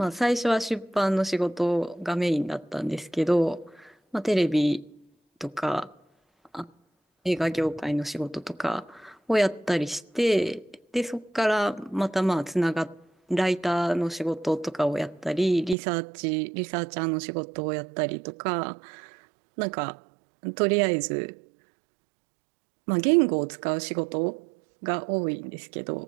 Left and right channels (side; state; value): left; drops out; at 15.8 s